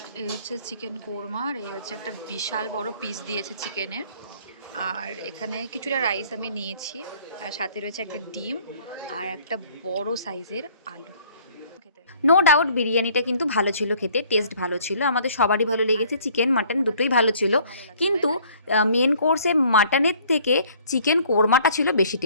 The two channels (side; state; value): both; inverted; correlation -0.57